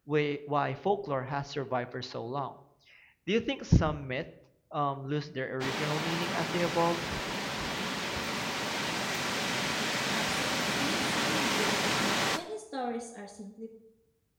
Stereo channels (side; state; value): both; identical; correlation 1.00